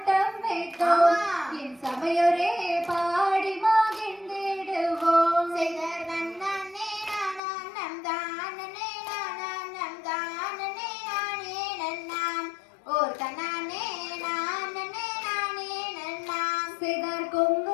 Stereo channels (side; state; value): right; drops out; at 7.4 s